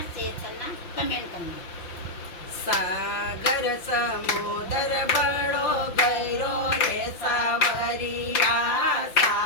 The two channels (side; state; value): right; late; 5.8 ms